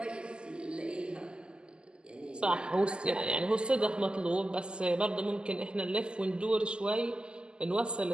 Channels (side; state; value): left; late; 0.049 ms